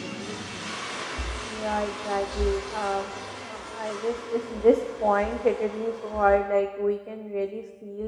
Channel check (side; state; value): both; identical; correlation 1.00